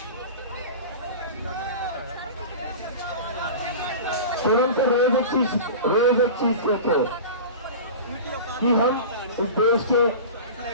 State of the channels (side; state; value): both; inverted; correlation -0.33